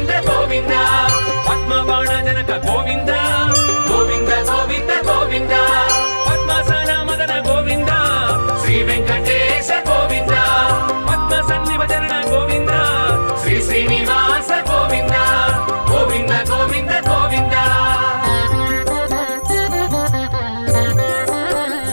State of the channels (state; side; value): inverted; both; correlation -1.00